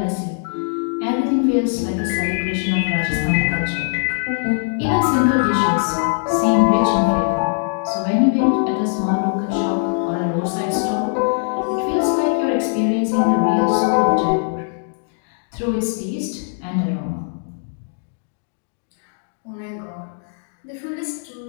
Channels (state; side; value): silent; right; digital silence